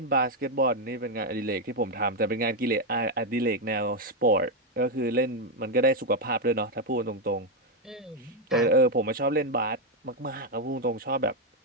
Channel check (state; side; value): normal; both; correlation 0.03